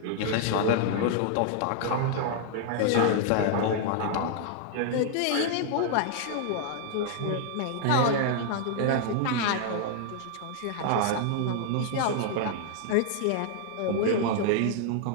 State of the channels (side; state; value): both; different; correlation 0.00